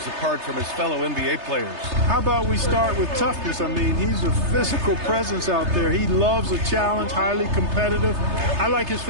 apart from his fellow NBA players? How about we start with toughness? I mean, he's a physical presence out there. He loves a challenge, highly competitive. I like his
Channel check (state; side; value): late; left; 3.3 ms